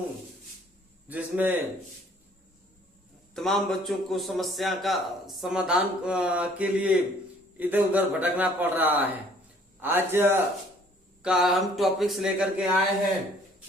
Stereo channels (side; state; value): both; normal; correlation 0.58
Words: जिसमें तमाम बच्चों को समस्या का समाधान के लिए इधर उधर भटकना पड़ रहा है। आज का हम टॉपिक्स लेकर के आए हैं